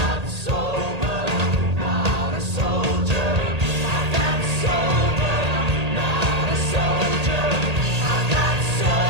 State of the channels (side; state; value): left; late; 1.8 ms